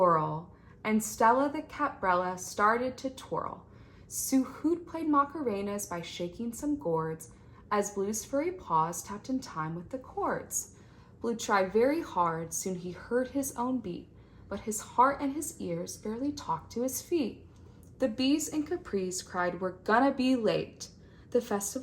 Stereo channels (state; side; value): identical; both; correlation 1.00